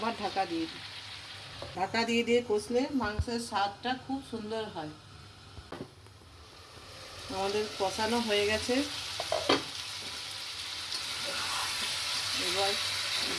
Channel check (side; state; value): both; identical; correlation 1.00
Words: ঢাকা দিয়ে দিই। ঢাকা দিয়ে দিয়ে কষলে মাংসের স্বাদটা খুব সুন্দর হয়। আমাদের কষানো হয়ে গেছে, এবার